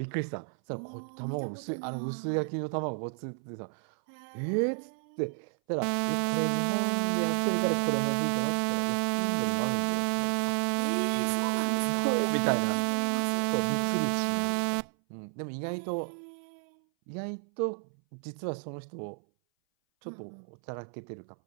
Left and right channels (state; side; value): silent; left; 57 dB below the other